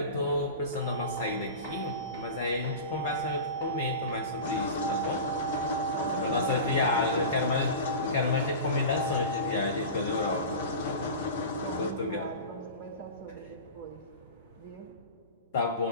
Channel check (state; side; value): inverted; both; correlation -0.31